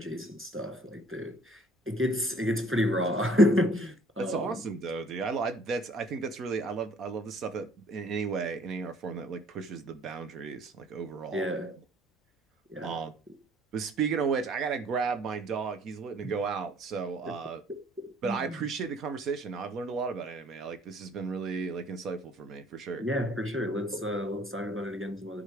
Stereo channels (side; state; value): both; normal; correlation 0.57